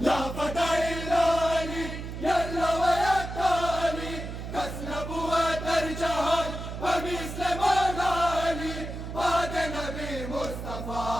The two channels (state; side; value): noise; right; hum, 7 dB below the sound